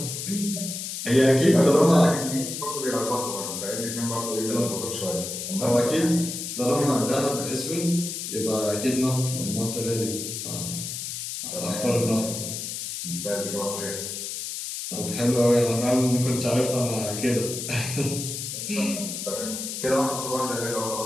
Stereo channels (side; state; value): left; noise; hiss, 6 dB below the sound